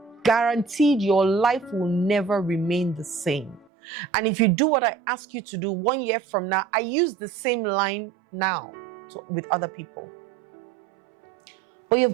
guaranteed your life will never remain the same. And if you do what I ask you to do 1 year from now, I use the same line now with other people. But you've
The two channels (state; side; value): drops out; left; at 3.7 s